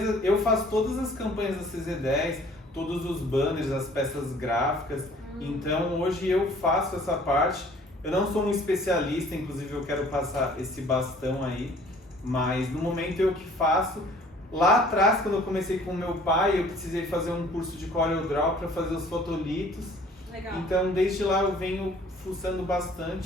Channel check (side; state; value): both; normal; correlation 0.53